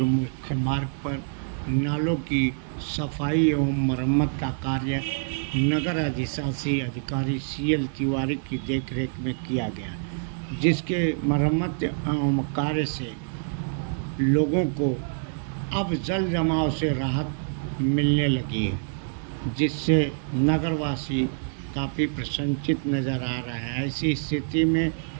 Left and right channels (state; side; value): silent; left; 61 dB below the other